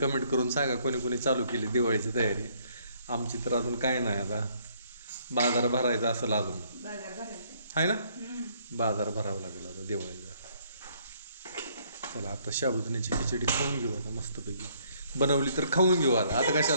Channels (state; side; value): inverted; both; correlation -0.66